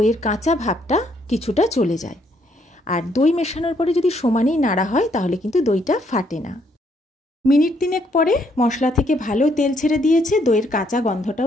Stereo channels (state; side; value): normal; both; correlation 0.70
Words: কাঁচা ভাবটা কিছুটা চলে যায়। আর দই মেশানোর পরে যদি সমানেই নাড়া হয় তাহলে কিন্তু দইটা ফাটে না। মিনিট 3 পরে মশলা থেকে ভালো তেল ছেড়ে দিয়েছে, দইয়ের কাঁচা